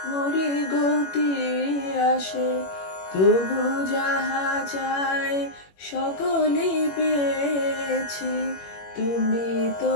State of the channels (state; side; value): late; right; 21 ms